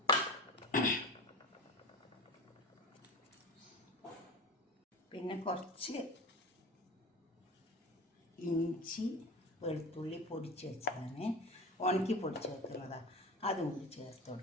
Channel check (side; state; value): both; normal; correlation 0.31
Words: പിന്നെ കുറച്ച് ഇഞ്ചി വെളുത്തുള്ളി പൊടിച്ച് വെച്ചതാണ്, ഉണക്കി പൊടിച്ച് വെക്കുന്നതാണ്. അതും കൂടി ചേർത്ത്